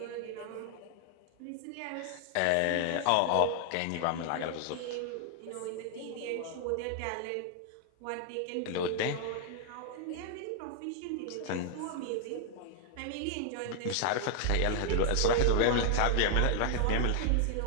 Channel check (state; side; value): different; both; correlation 0.00